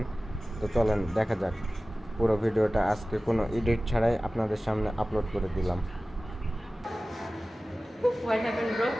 তো চলেন দেখা যাক। পুরো ভিডিওটা আজকে কোনো এডিট ছাড়াই আপনাদের সামনে আপলোড করে দিলাম। What happened, bro?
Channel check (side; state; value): both; normal; correlation 0.97